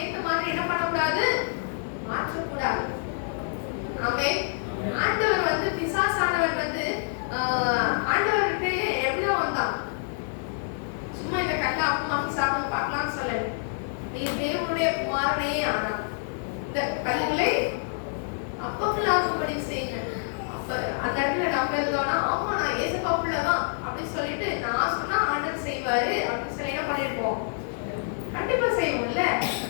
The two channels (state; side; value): silent; right; 60 dB below the other